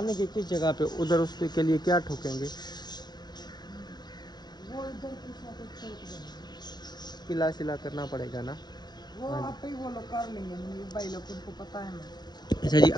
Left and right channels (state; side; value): late; right; 0.20 ms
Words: की किस जगह पे, उधर उसके लिए क्या ठोकेंगे? वो इधर कुछ किला सिला करना पड़ेगा ना, वो आप ही वो लोग कर लेंगे, भाई लोग उनको पता है ना। अच्छा जी,